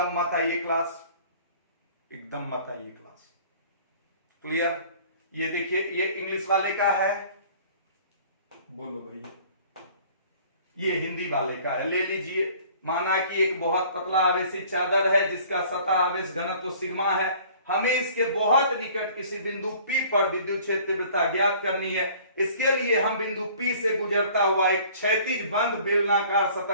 मत आइए क्लास, एकदम मत आइए क्लास। क्लियर? ये देखिए, ये इंग्लिश वाले का है, बोलो भैया, ये हिंदी वाले का है, ले लीजिए। माना कि एक बहुत पतला आवेशित चादर है जिसका सतह आवेश घनत्व सिग्मा है, हमें इसके बहुत निकट किसी बिंदु P पर विद्युत क्षेत्र तीव्रता ज्ञात करनी है। इसके लिए हम बिंदु P से गुजरता हुआ एक क्षैतिज बंद बेलनाकार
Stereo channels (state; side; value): inverted; both; correlation -0.51